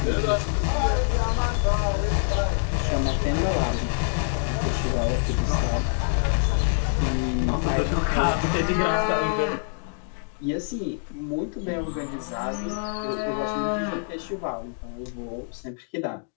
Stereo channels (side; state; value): right; silent; digital silence